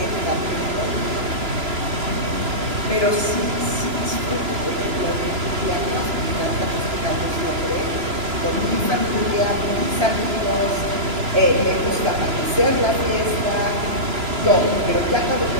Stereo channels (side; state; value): left; late; 3.0 ms